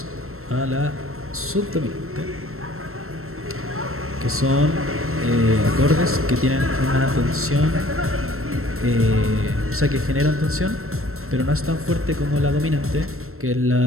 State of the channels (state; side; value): late; left; 0.62 ms